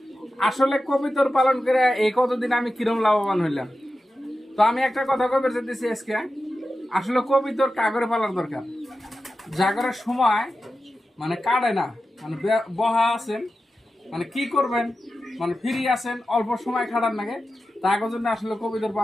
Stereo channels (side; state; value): both; normal; correlation 0.92